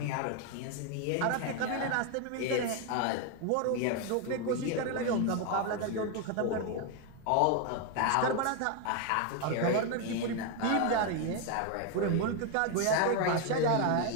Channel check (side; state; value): both; different; correlation 0.01